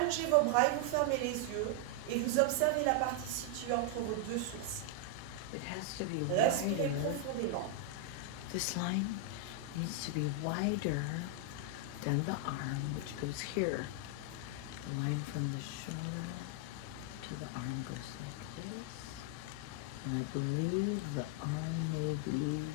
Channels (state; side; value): different; both; correlation 0.00